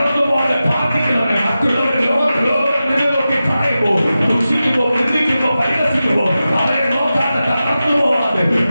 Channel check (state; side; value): inverted; both; correlation -0.93